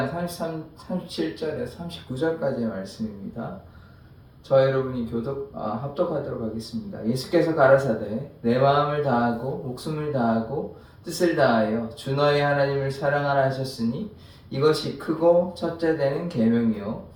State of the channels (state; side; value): identical; both; correlation 1.00